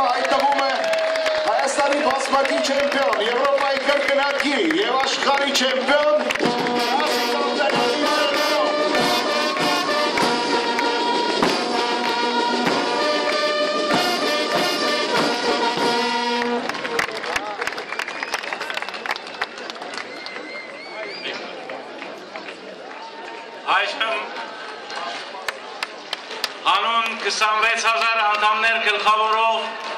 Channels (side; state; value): both; identical; correlation 1.00